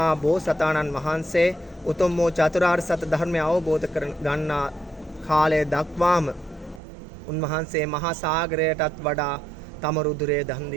බෝසතාණන් වහන්සේ උතුම් වූ චතුරාර්ය සත්‍ය ධර්මය අවබෝධ කර ගන්නා කාලය දක්වාම උන්වහන්සේ මහා සාගරයටත් වඩා තම රුධිරය දන්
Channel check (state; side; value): drops out; left; at 6.8 s